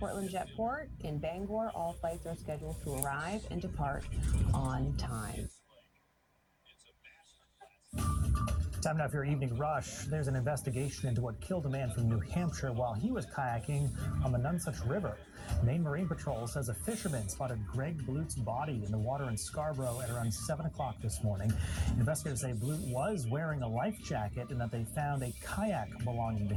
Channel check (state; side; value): identical; both; correlation 1.00